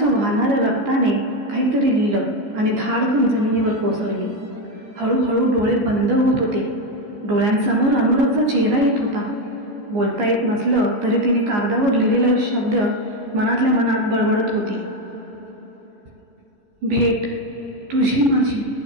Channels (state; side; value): late; left; 14 ms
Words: वाहणाऱ्या रक्ताने काहीतरी लिहिलं आणि धाडकन जमिनीवर कोसळली. हळूहळू डोळे बंद होत होते. डोळ्यांसमोर अनुरागचा चेहरा येत होता. बोलता येत नसलं तरी तिने कागदावर लिहिलेले शब्द मनातल्या मनात बडबडत होती. भेट तुझी माझी,